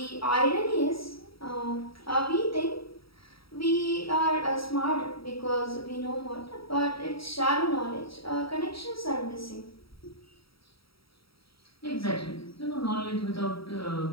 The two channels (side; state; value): right; late; 0.75 ms